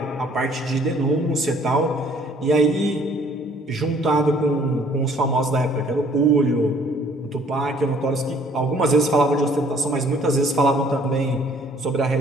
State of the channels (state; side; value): normal; both; correlation 0.59